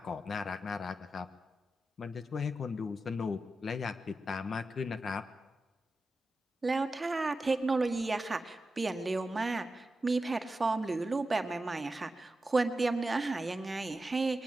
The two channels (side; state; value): both; normal; correlation 0.91